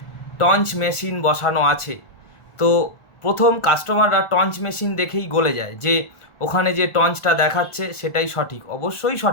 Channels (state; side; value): late; right; 1.5 ms